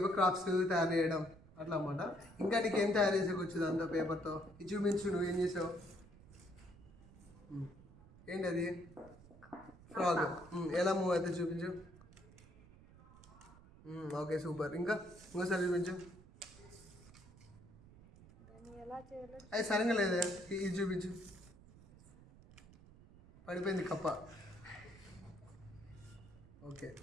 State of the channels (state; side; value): noise; right; rumble, 21 dB below the sound